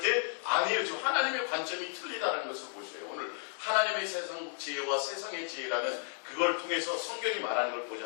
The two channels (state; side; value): silent; right; 56 dB below the other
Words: 아니에요. 지금 하나님의 관점이 틀리다는 것을 보세요. 오늘 하나님의 세상 지혜와 세상의 지혜라는 그걸 통해서 성경이 말하는 걸